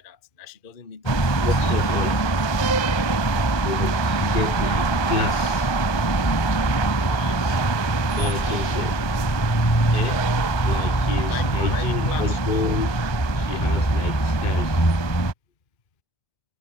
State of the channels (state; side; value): late; right; 1.3 ms